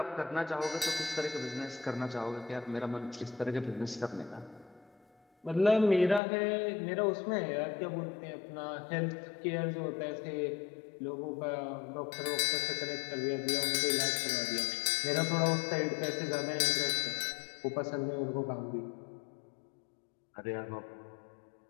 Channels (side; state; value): right; drops out; at 6.2 s